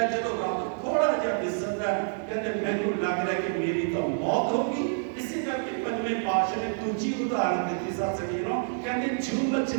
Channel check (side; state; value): left; silent; digital silence